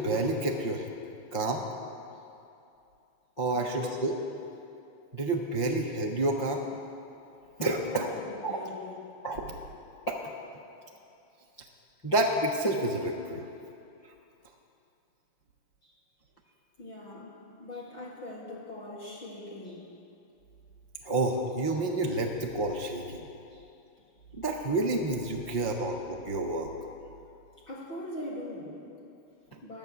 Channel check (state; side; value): late; right; 5.7 ms